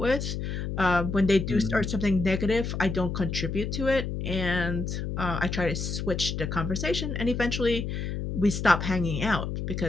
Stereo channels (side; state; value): left; noise; hum, 4 dB below the sound